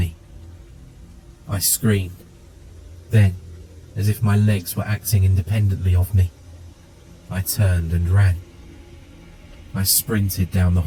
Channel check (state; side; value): identical; both; correlation 1.00